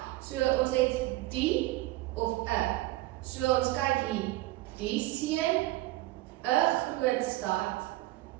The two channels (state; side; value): quieter; left; 18.0 dB